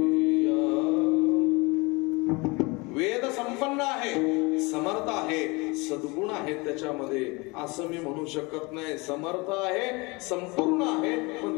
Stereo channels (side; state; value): right; quieter; 26.2 dB